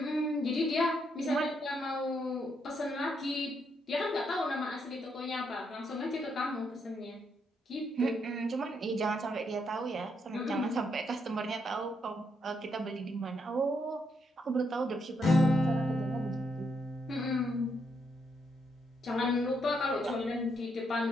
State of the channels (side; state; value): both; normal; correlation 0.77